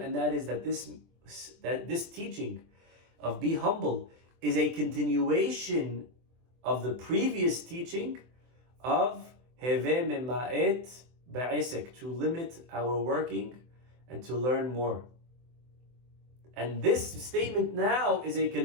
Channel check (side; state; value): left; late; 24 ms